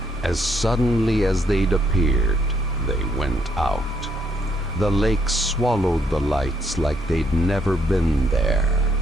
as suddenly as they'd appeared, they went out. The lake swallowed the lights like they'd never been there.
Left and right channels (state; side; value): normal; both; correlation 0.71